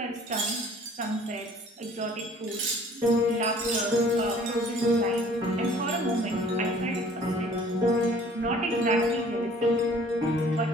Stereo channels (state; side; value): normal; both; correlation 0.53